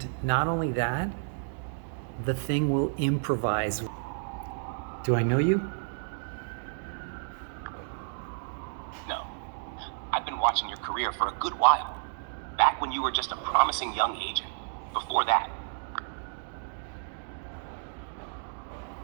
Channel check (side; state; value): left; silent; digital silence